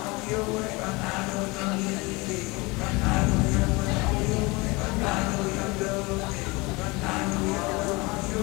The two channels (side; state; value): right; quieter; 24.9 dB